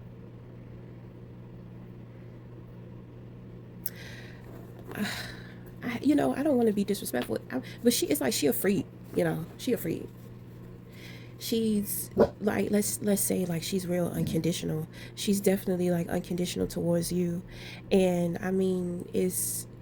you know, I don't want to be disrespectful, but she, it's like she a freak, you know, she a freak. She's like, let's say like she's real unconditional. She's definitely like unconditional towards you. And I mean, it's,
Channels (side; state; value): both; identical; correlation 1.00